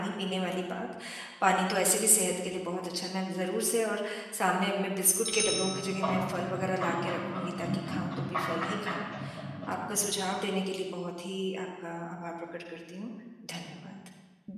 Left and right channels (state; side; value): identical; both; correlation 1.00